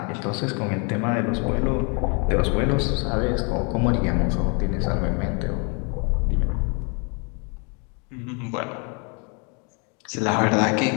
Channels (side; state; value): right; quieter; 35.0 dB